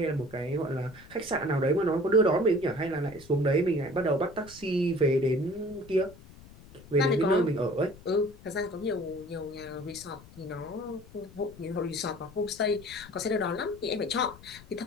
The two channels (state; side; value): noise; left; rumble, 20 dB below the sound